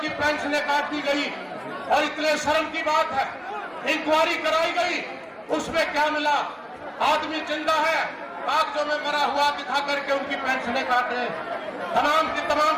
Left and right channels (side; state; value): both; identical; correlation 1.00